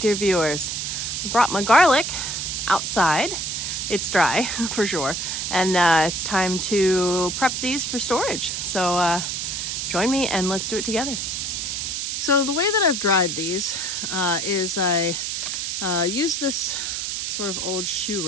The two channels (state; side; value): noise; right; hiss, 2 dB below the sound